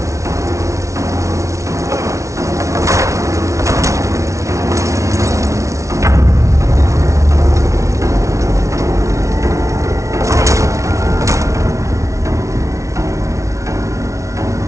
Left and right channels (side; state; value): left; late; 0.14 ms